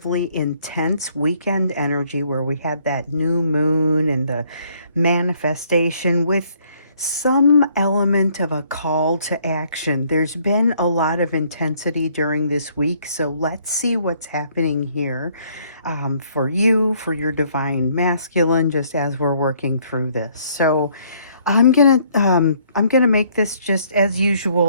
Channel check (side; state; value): both; inverted; correlation -0.65